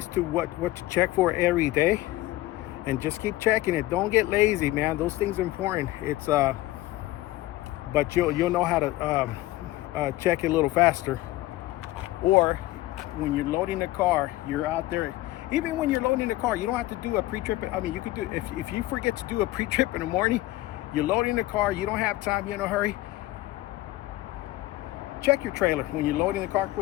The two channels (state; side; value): quieter; right; 17.3 dB